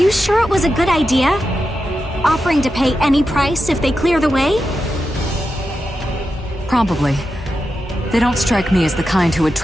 sure it was a good idea? Offering to pay any price if they clear the way? Probably. They don't strike me as the kind who would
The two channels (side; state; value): both; normal; correlation 0.89